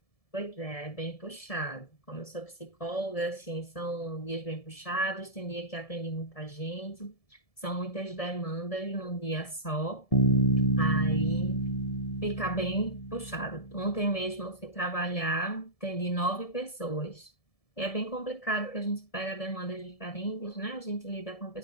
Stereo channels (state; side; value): late; right; 1.7 ms